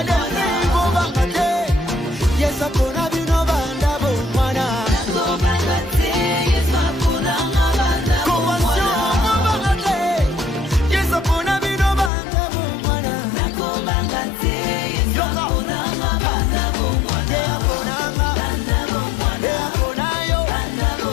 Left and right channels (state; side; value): drops out; right; at 12.1 s